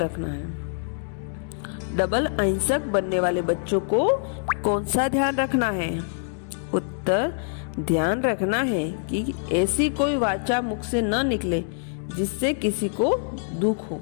है? डबल अहिंसक बनने वाले बच्चों को कौन सा ध्यान रखना है? उत्तर, ध्यान रखना है कि ऐसी कोई वाचा मुख से न निकले जिससे किसी को दुख हो,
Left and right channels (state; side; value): silent; right; digital silence